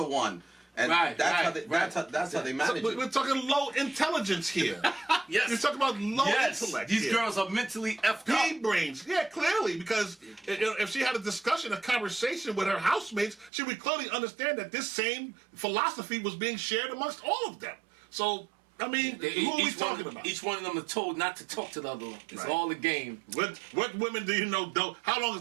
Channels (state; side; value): drops out; left; at 13.5 s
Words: one. And that's how they manage it. We're talking low intelligence here. Yes. You're talking about low intellect. These girls are mentally effed up. Pea brains. Yeah, clearly, because if she had a discussion, a conversation with her housemates, she would clearly understand that this same philosophy was being shared amongst all of them. So, I mean, who are we talking about? Each one of them are told not to talk to the other one. It's all a game. What women do you know don't? How long is